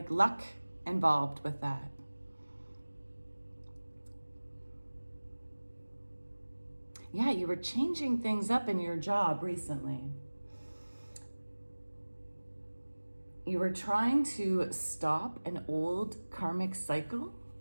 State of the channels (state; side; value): inverted; both; correlation -1.00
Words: luck involved with that. Yeah, you were changing things up in your job recently. You were trying to stop an old karmic cycle